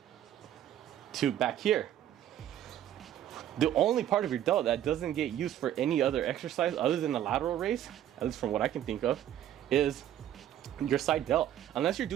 to back here. The only part of your delt that doesn't get used for any other exercise other than the lateral raise, at least from what I can think of, is your side delt. Unless you're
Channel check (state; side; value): quieter; left; 11.4 dB